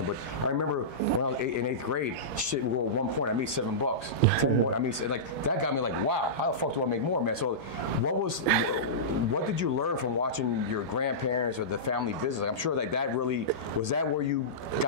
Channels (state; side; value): normal; both; correlation -0.18